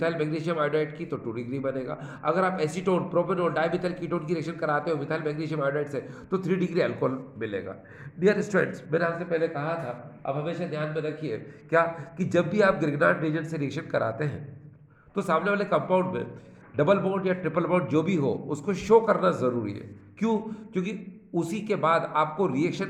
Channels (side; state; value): both; identical; correlation 1.00